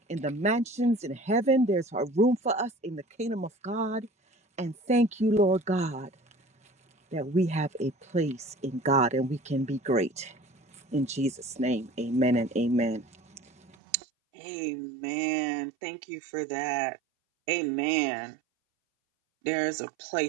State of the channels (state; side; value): drops out; left; at 13.8 s